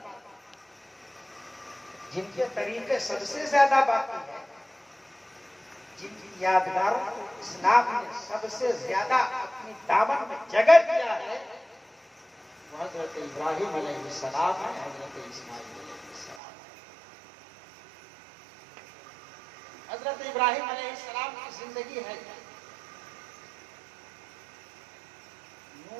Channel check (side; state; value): left; drops out; at 16.4 s